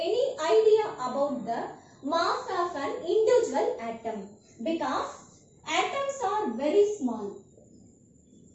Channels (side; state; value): both; identical; correlation 1.00